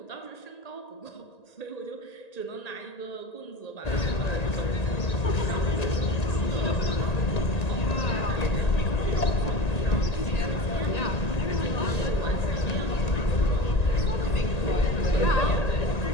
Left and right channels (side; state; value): right; late; 1.9 ms